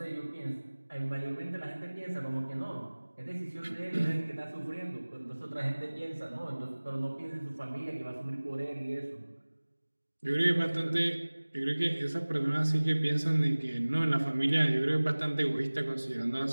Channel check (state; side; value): inverted; both; correlation -1.00